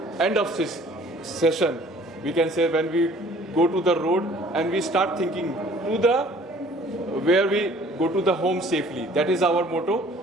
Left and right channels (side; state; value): both; normal; correlation 0.53